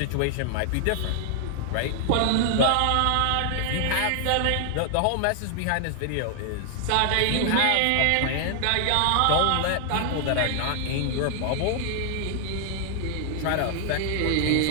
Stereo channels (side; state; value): both; different; correlation 0.00